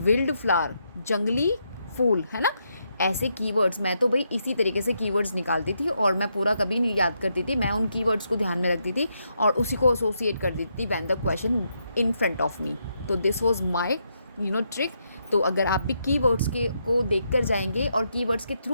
wild flower, जंगली फूल, है ना। ऐसे कीवर्ड्स, मैं तो भाई इसी तरीके से कीवर्ड्स निकालती थी और मैं पूरा कभी नहीं याद करती थी, मैं उन कीवर्ड्स को ध्यान में रखती थी और उसी को एसोसिएट कर देती थी when the question in front of me. तो दिस वाज माय ट्रिक। तो अगर आप भी कीवर्ड्स को देख कर जाएंगे और कीवर्ड्स के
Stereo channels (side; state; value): both; inverted; correlation -0.80